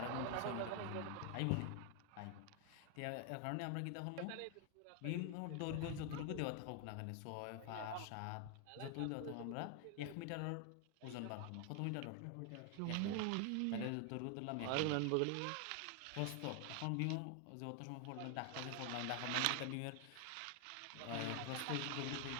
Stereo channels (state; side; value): different; both; correlation 0.00